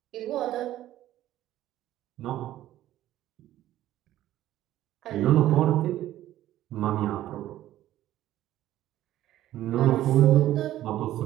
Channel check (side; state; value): left; quieter; 13.6 dB